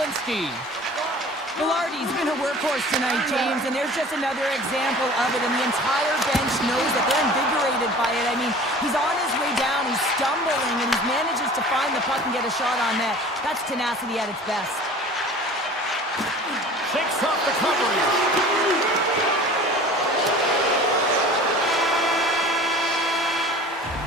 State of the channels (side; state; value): both; normal; correlation 0.43